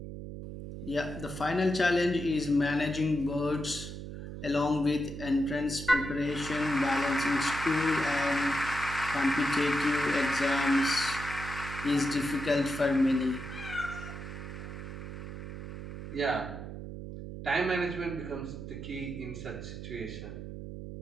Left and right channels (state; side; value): noise; right; hum, 9 dB below the sound